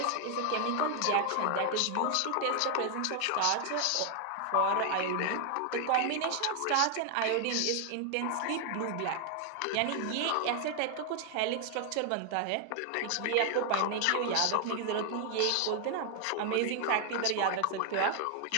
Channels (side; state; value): both; different; correlation 0.00